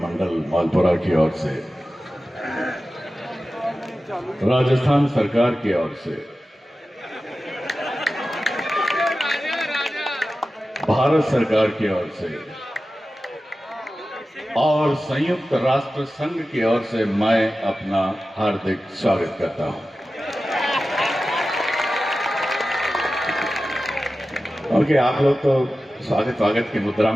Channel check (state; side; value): normal; both; correlation 0.94